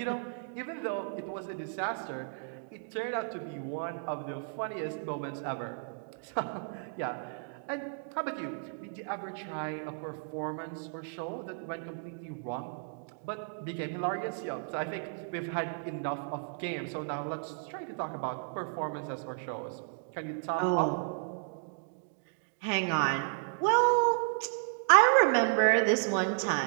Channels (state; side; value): silent; left; digital silence